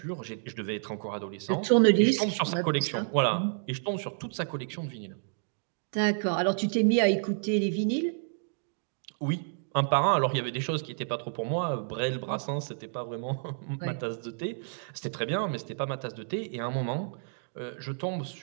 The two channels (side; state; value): left; silent; digital silence